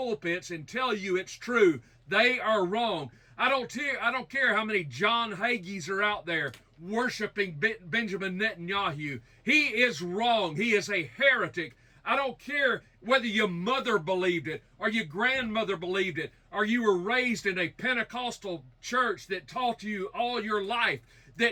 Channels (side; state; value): both; identical; correlation 1.00